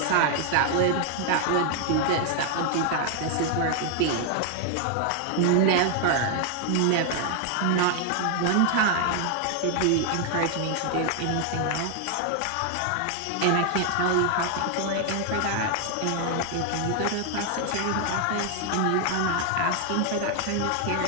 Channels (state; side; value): different; both; correlation 0.00